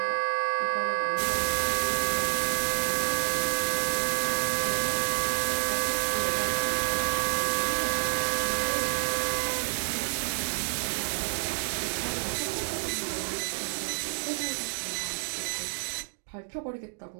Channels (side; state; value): left; silent; digital silence